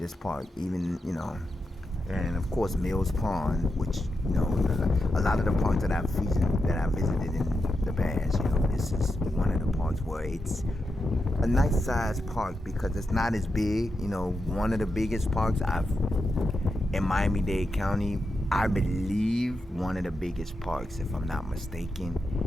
park. Even, you know, and of course Mills Pond, which, you know, a lot of the parks that I've visited in the past, you know, this is one of the parks where it's a nice sized park because it's not as big. You know, one of the biggest parks in Miami-Dade County, I believe one of the biggest parks, if I'm not mistaken,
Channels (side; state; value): both; normal; correlation 0.87